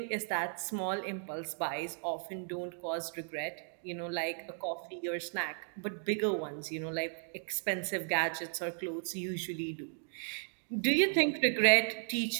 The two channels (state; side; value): silent; left; 54 dB below the other